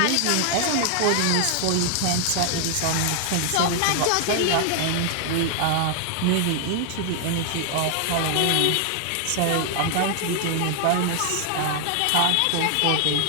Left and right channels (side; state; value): both; different; correlation 0.00